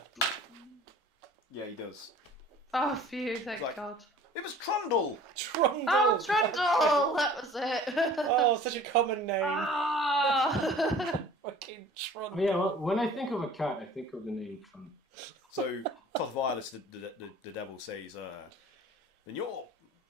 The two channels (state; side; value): normal; both; correlation 0.46